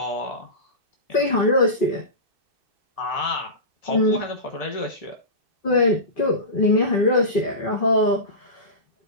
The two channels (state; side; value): late; left; 2.6 ms